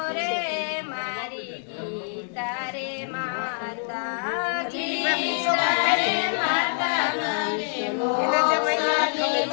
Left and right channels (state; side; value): silent; right; 59 dB below the other